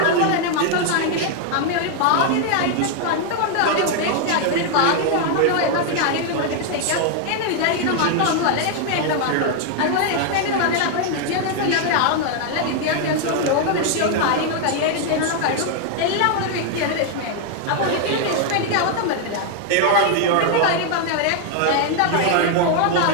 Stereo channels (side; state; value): both; different; correlation 0.00